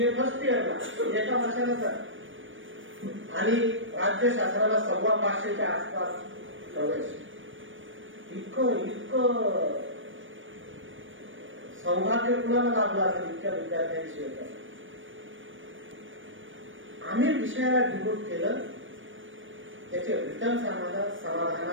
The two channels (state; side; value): late; left; 0.56 ms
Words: फर्स्ट इयरला एका वर्षानंतर आणि राज्यशास्त्राला 525च्या आसपास प्रवेश. इतकं सौभाग्य कुणाला लाभलं असेल इतक्या विद्यार्थ्यांशी होतं. आम्ही विषयाला डिवोट केलं, त्याचे रिटर्न